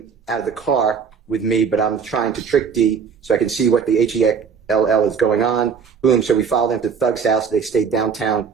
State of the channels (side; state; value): left; quieter; 6.3 dB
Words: out of the car with me, but I'm trying to trick D so I can see what the H-E-L-L is going on. Boom, so we followed them to Thug's house. They stayed downtown